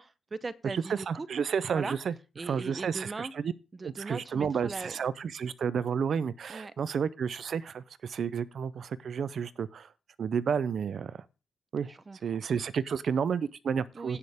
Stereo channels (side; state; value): left; quieter; 6.3 dB